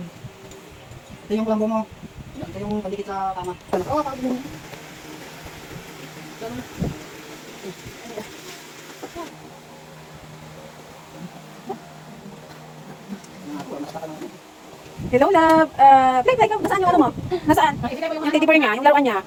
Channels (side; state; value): both; identical; correlation 1.00